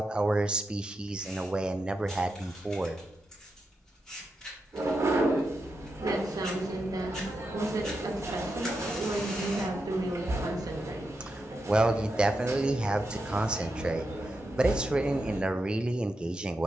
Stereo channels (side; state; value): both; normal; correlation 0.86